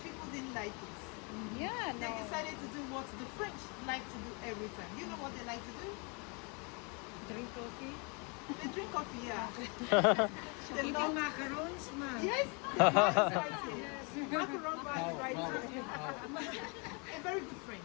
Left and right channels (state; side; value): quieter; right; 33.2 dB